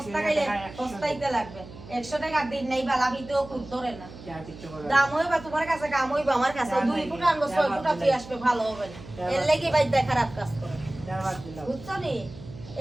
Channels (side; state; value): right; noise; hum, 16 dB below the sound